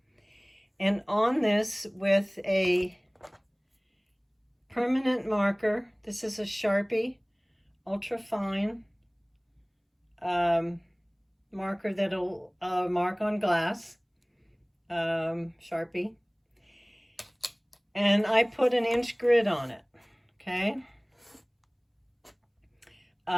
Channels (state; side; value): identical; both; correlation 1.00